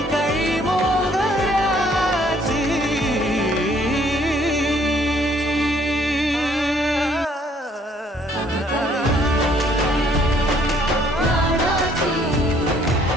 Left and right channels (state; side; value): normal; both; correlation 0.63